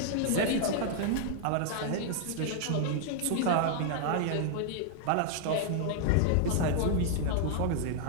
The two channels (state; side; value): different; both; correlation 0.00